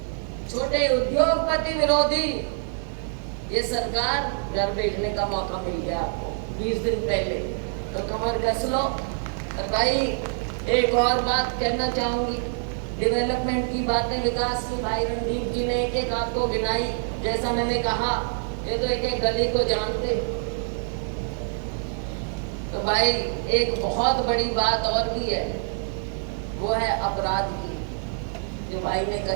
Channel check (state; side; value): silent; left; digital silence